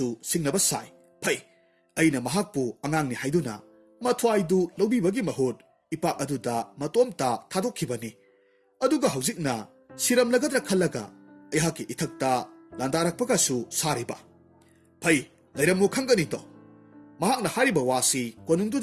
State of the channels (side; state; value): both; identical; correlation 1.00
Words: singnaba sai phai aina mahakpu angangni haiduna mathwaidu lobibagi mahut ipak aduda matomta thadokhibani aduga haujikna siramlagadra khallaga ehaki ithakta landarakpagasu sariba phai lairamu khangani to mahakna hariba wasi